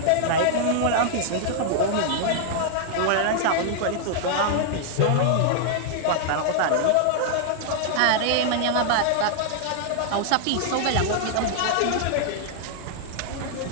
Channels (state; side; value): different; both; correlation -0.01